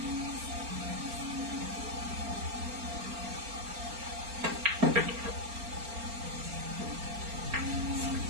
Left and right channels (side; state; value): left; late; 4.4 ms